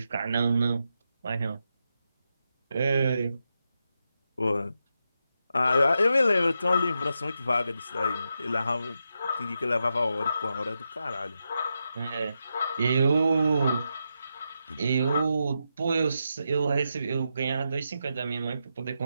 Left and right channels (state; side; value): inverted; both; correlation -0.86